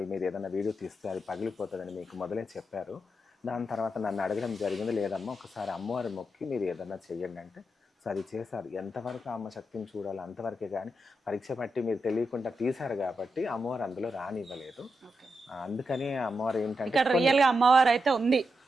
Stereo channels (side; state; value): both; normal; correlation 0.86